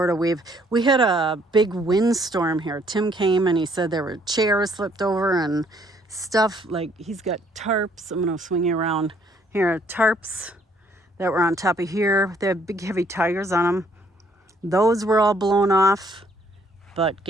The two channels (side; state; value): both; normal; correlation 0.64